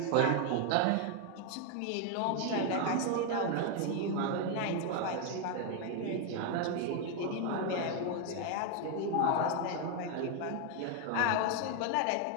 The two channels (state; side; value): different; both; correlation 0.01